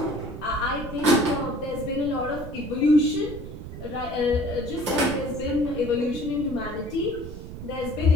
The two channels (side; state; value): right; noise; rumble, 10 dB below the sound